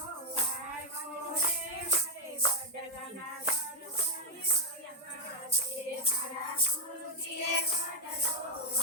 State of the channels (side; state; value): both; normal; correlation 0.03